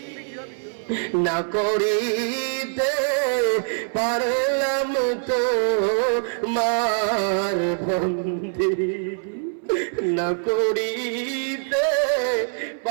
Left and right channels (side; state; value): left; silent; 59 dB below the other